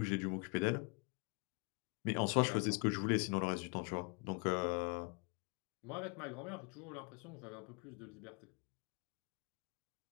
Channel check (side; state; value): right; quieter; 33.6 dB